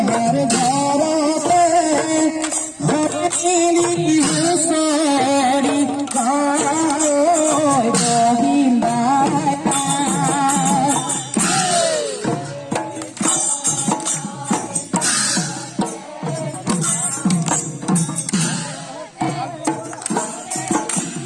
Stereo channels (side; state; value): both; identical; correlation 1.00